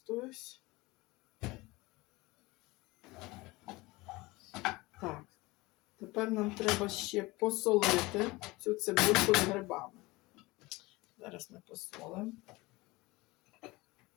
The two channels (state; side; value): quieter; right; 21.9 dB